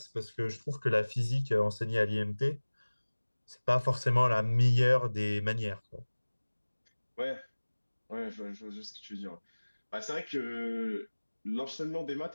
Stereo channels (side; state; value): both; inverted; correlation -1.00